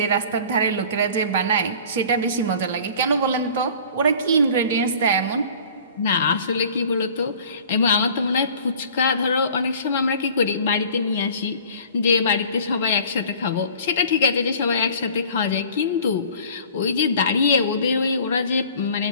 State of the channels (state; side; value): inverted; both; correlation -0.47